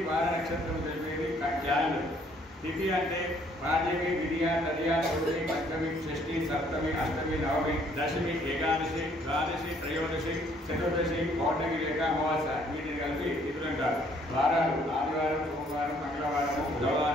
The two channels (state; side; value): normal; both; correlation 0.64